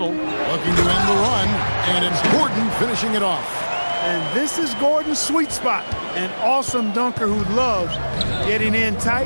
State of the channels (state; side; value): inverted; both; correlation -1.00